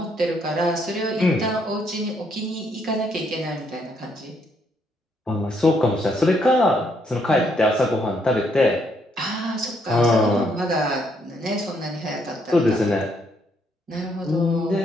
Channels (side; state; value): both; normal; correlation 0.72